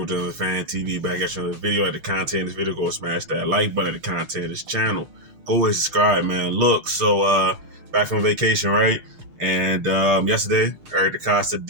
the Fan TV back at you another video. At the content of this video, go smash that like button at the content of this channel. Go ahead and subscribe, man. Look, back from vacation, right? And yesterday, Eric DeCosta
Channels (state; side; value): late; left; 6.5 ms